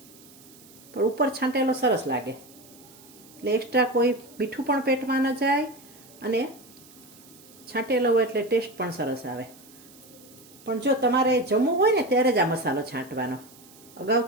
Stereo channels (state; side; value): noise; right; hiss, 23 dB below the sound